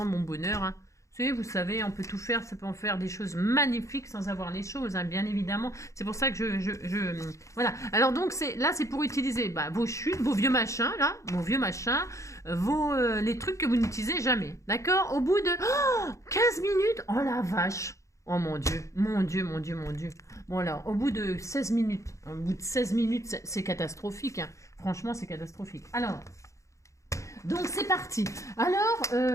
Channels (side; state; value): right; late; 0.15 ms